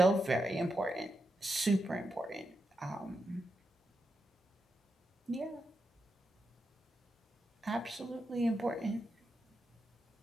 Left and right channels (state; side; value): normal; both; correlation 0.86